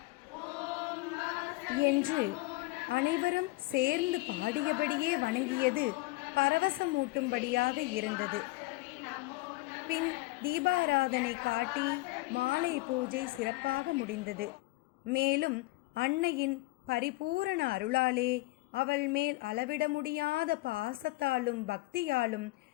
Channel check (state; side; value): quieter; right; 20.9 dB